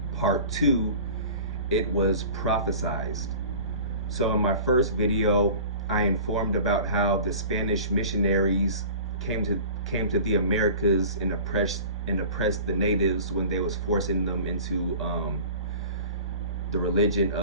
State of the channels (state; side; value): inverted; both; correlation -0.41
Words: Part 2. It was prophesied. So in my first video, I informed about how the Spanish missionaries came to the Americas and oppressed the natives when they was forcing them into the religion